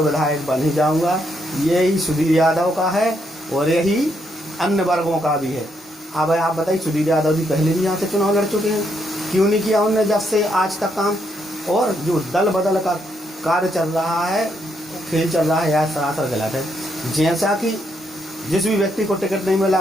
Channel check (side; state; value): both; normal; correlation 0.76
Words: विधायक बन ही जाऊंगा। यही सुधीर यादव का है और यही अन्य वर्गों का भी है। अब आप बताइए, सुधीर यादव जी पहले भी यहाँ से चुनाव लड़ चुके हैं, क्यों नहीं किया उन्होंने जब से आज तक काम? और जो दल बदल का कार्य चल रहा है, खेल चल रहा है, यह सरासर गलत है। जैसा कि जिस भी व्यक्ति को टिकट नहीं मिला